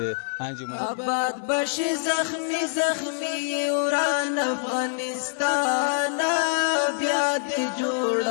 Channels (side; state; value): right; silent; digital silence